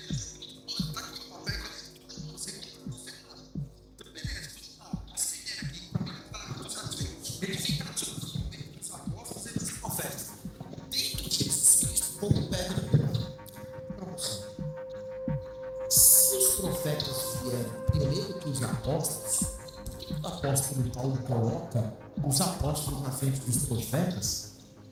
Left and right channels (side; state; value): both; identical; correlation 1.00